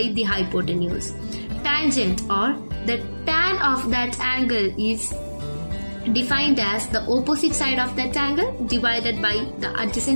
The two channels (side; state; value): both; inverted; correlation -1.00